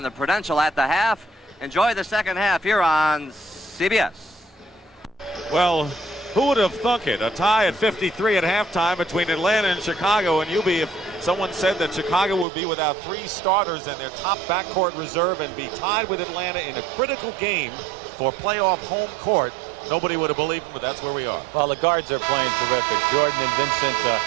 the Prudential at the Half. Enjoy the second half here on CBS. Well, who would have thunk it? A tie at 53 at halftime between Atlanta and Chicago. And Hubie, if someone said that Chicago would be without 3 starters and their top backcourt reserve and be tied with Atlanta in a critical game for playoff home court, nobody would have believed him, but that's where we are. Well, the guards are playing terrific. Jordan and Vincent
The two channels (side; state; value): left; drops out; at 12.5 s